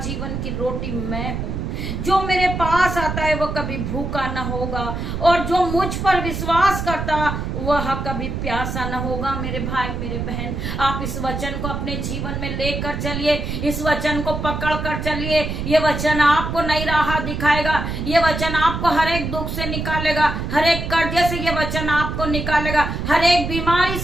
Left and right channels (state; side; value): noise; right; rumble, 4 dB below the sound